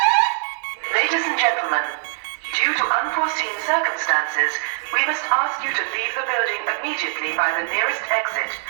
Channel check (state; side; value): silent; left; digital silence